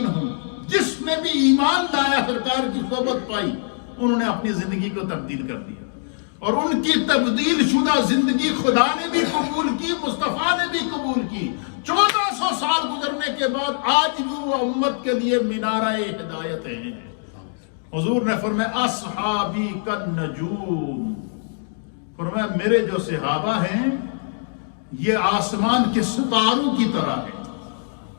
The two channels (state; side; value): silent; right; digital silence